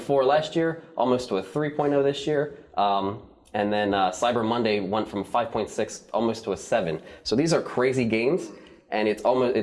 last year, almost to a 3.0 this year. And then Cyber Monday went from 5.6 almost to a 7. So these are crazy gains, and it's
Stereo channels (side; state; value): both; identical; correlation 1.00